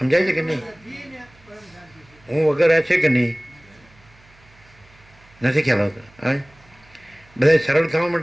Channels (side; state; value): right; noise; hum, 28 dB below the sound